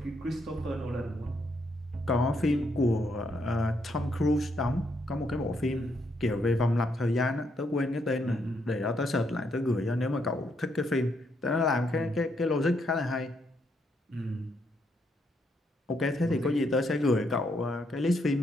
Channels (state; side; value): normal; both; correlation 0.75